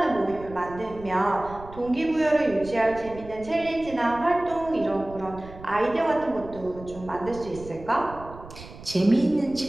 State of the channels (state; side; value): noise; right; rumble, 16 dB below the sound